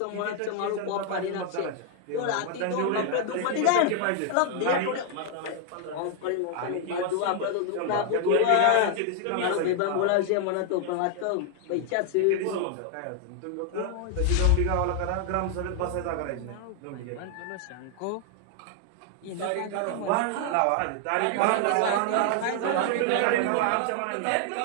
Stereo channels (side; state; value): both; different; correlation 0.00